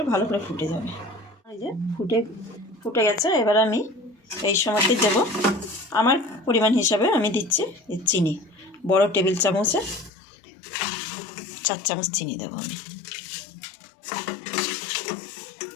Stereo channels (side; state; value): right; drops out; at 10.1 s